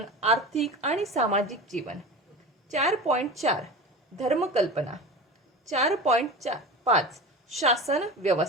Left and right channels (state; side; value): normal; both; correlation 0.31